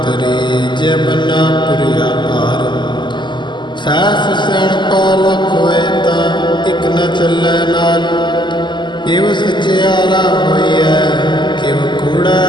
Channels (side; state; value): right; late; 0.22 ms